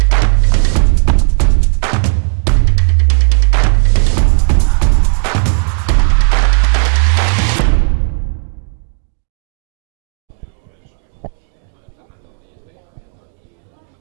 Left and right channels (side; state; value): left; silent; digital silence